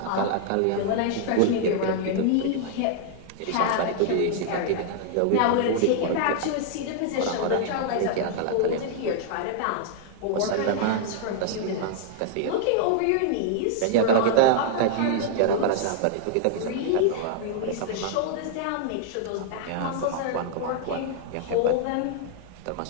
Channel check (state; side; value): different; both; correlation -0.01